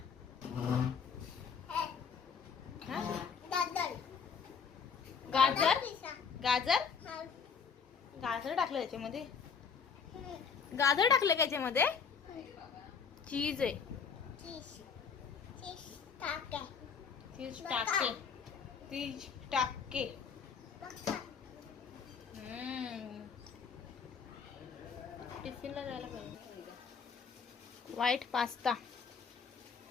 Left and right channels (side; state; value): right; quieter; 6.2 dB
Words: गाजर गाजर गाजर टाकलं त्याच्यामध्ये. गाजर टाकलं का याच्यामध्ये? चीज आहे. चीज टाके. चीज टाके. टिफिनला जायला पाहिजे. White pasta.